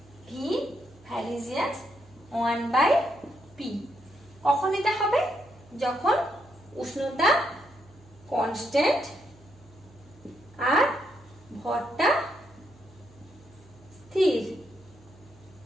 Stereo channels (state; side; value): noise; right; hum, 26 dB below the sound